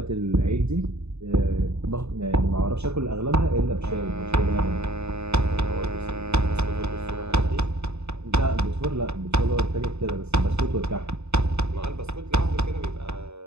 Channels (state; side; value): late; left; 0.80 ms